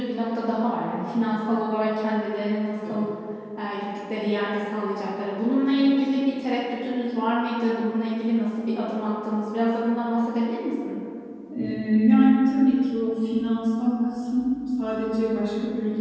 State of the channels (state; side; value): identical; both; correlation 1.00